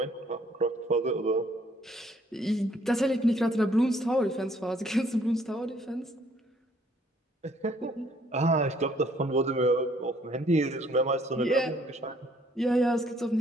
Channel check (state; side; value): normal; both; correlation 0.64